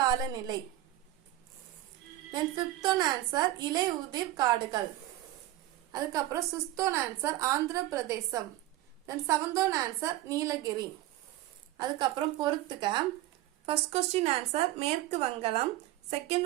தென் ஃபிஃப்த் ஒன் ஆன்சர் இலை உதிர் காடுகள். அதுக்கப்புறம் sixth one answer Andhra Pradesh. Then seventh one answer Nilgiri. அதுக்கப்புறம் பொறுத்துக்க. ஃபர்ஸ்ட் கொஸ்டின் ஆன்சர் மேற்கு வங்காளம்.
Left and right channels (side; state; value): left; quieter; 14.9 dB